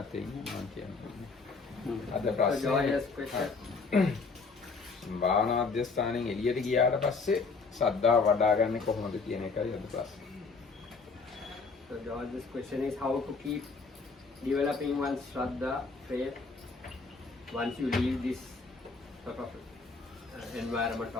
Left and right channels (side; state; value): right; quieter; 4.4 dB